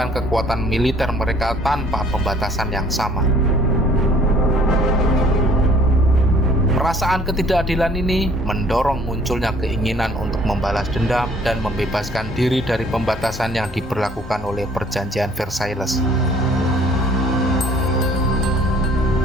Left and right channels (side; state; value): both; normal; correlation 0.57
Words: kekuatan militer mereka tanpa pembatasan yang sama. Perasaan ketidakadilan ini mendorong munculnya keinginan untuk membalas dendam dan membebaskan diri dari pembatasan yang diberlakukan oleh perjanjian Versailles.